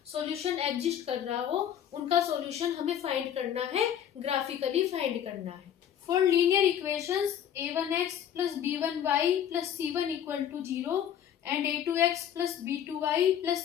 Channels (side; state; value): right; quieter; 9.7 dB